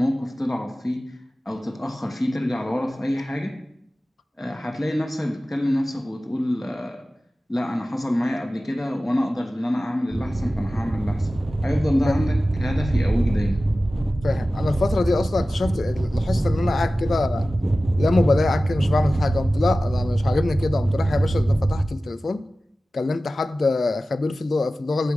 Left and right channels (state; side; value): normal; both; correlation 0.96